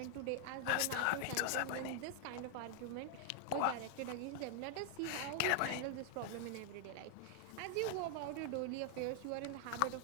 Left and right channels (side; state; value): both; different; correlation 0.00